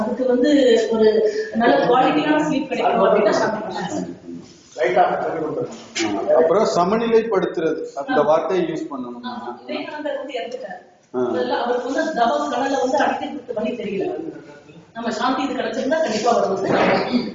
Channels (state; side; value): identical; both; correlation 1.00